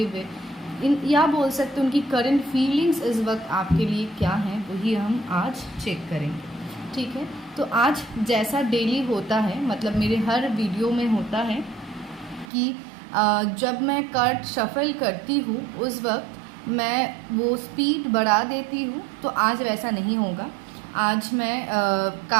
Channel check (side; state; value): left; drops out; at 12.5 s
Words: वे, या बोल सकते हैं उनकी करंट फीलिंग्स इस वक्त आपके लिए क्या हैं, वही हम आज चेक करेंगे। ठीक है, तो आज जैसा डेली होता है, मतलब मेरे हर वीडियो में होता है कि जब मैं कार्ड शफल करती हूँ उस वक्त मैं वो स्पीड बढ़ा देती हूँ, तो आज वैसा नहीं होगा। आज मैं